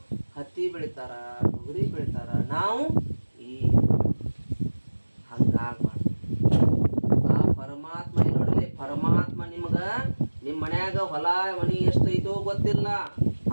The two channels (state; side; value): inverted; both; correlation -1.00